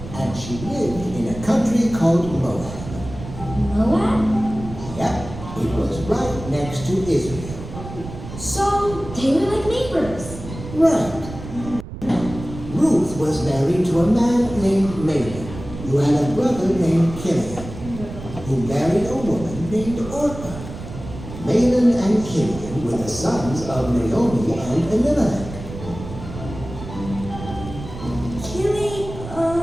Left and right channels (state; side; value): noise; right; rumble, 11 dB below the sound